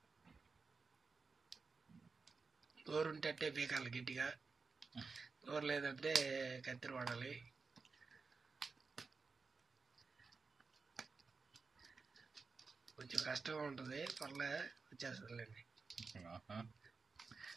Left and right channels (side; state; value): left; quieter; 4.6 dB